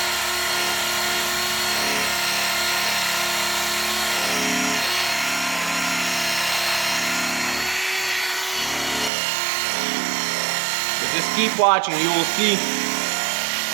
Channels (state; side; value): drops out; left; at 9.1 s